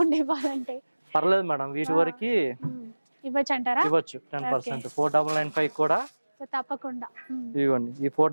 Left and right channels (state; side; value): inverted; both; correlation -1.00